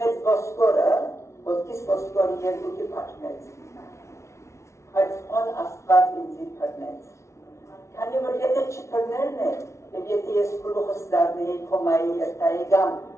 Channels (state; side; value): late; right; 0.13 ms